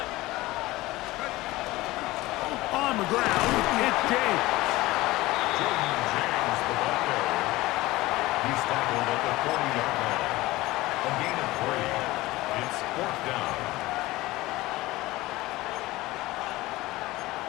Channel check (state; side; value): quieter; right; 18.9 dB